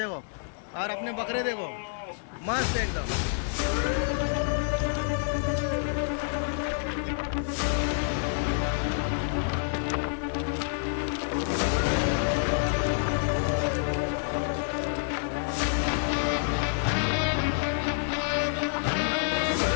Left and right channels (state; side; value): silent; right; 59 dB below the other